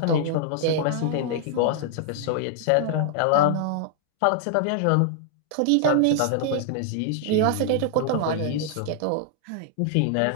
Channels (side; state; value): both; different; correlation 0.00